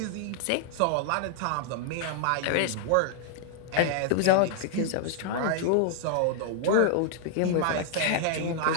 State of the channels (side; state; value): both; different; correlation 0.00